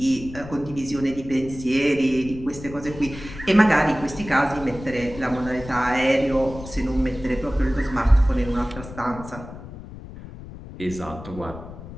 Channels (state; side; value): noise; left; rumble, 14 dB below the sound